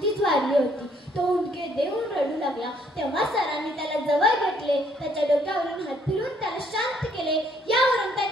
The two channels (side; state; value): both; normal; correlation 0.66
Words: वारली होती. तो हुंदके देऊन रडू लागला. तेव्हा सरांनी त्याला जवळ घेतले, त्याच्या डोक्यावरून हात फिरवून त्याला शांत केले. यावरून